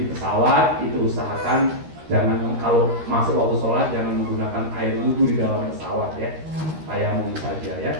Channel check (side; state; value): left; late; 13 ms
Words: pesawat itu usahakan jangan kalau masuk waktu sholat jangan menggunakan air wudhu di dalam pesawat ya. Tayamum saja ya.